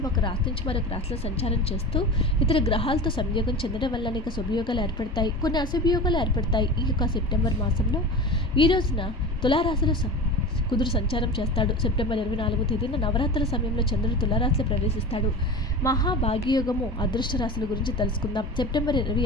ఒక రాశి నుంచి మరొక రాశిలో సంచారం చేస్తూ ఇతర గ్రహాలతో సంయోగం చెందడం వల్ల అనేక శుభయోగాలు ఏర్పడతాయి, కొన్ని అశుభయోగాలు ఏర్పడతాయి. ఈ యొక్క సెప్టెంబర్ మాసంలో ఈ రోజున తులారాశిలో కుదురు సంచారం చేస్తాడు. సెప్టెంబర్ 24వ తేదీన నవరాత్రుల సమయంలో చంద్రుడు తులారాశిలో ప్రవేశిస్తాడు. మహాభాగ్యయోగము అదృష్ట రాశుల గురించి తెలుసుకుందాం. సెప్టెంబర్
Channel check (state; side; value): normal; both; correlation 0.31